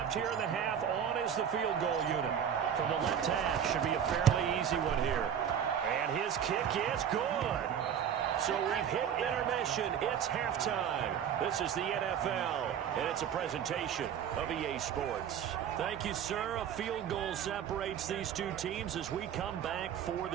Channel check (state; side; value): quieter; left; 8.7 dB